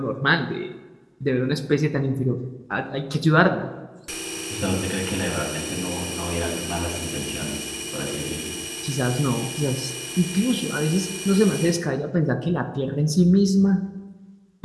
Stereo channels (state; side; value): identical; both; correlation 1.00